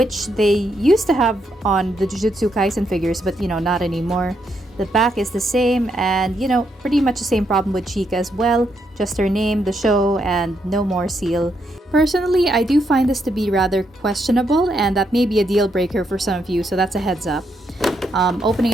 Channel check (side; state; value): both; normal; correlation 0.78